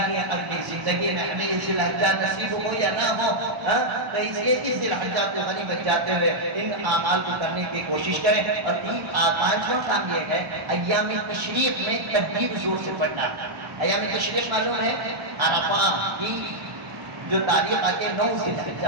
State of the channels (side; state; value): left; late; 1.1 ms